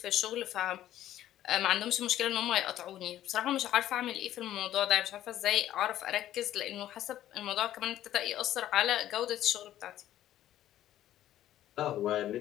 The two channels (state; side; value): quieter; right; 12.8 dB